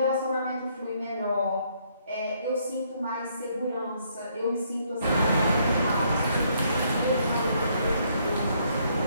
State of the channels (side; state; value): both; inverted; correlation -0.70